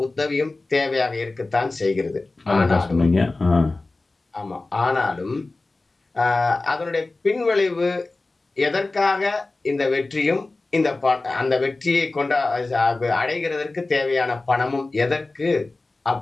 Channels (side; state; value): right; quieter; 3.3 dB